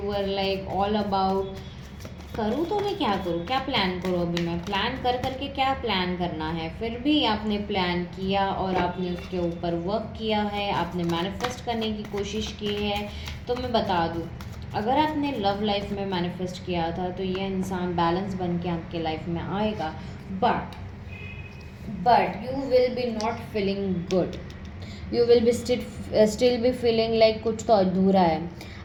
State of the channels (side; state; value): both; identical; correlation 1.00